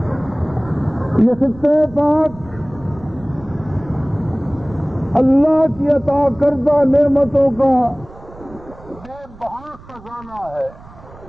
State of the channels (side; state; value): right; noise; rumble, 20 dB below the sound